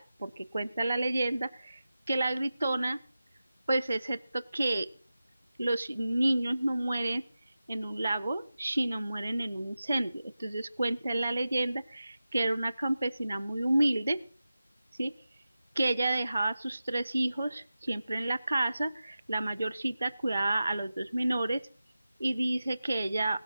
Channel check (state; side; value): inverted; both; correlation -0.94